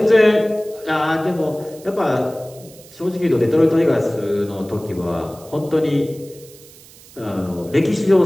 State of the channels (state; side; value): noise; right; hiss, 22 dB below the sound